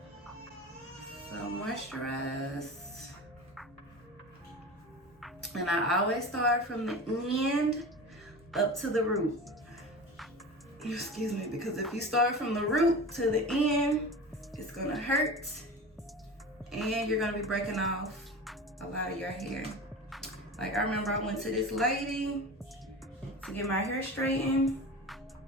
So moisturize. And I always start from the end up to the root. Excuse me, because if you start from the root to the end, it's gonna hurt and you're gonna be breaking off a lot of your hair. Like I remember I went to this lady to get my hair straightened.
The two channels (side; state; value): both; normal; correlation 0.32